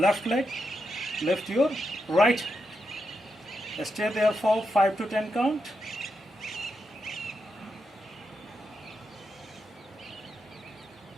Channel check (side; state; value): both; normal; correlation 0.84